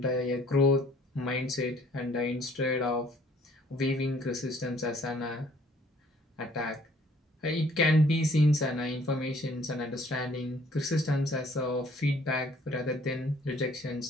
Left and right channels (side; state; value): both; normal; correlation 0.59